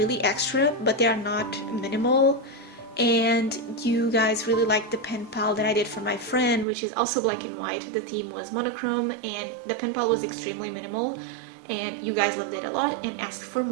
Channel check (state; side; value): drops out; left; at 6.7 s